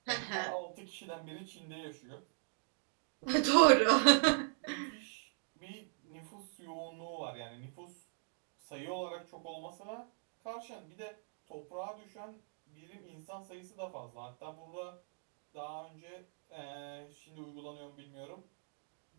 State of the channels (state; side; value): silent; left; digital silence